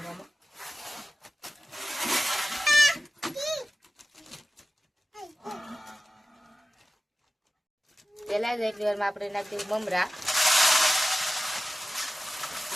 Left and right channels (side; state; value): both; normal; correlation 0.95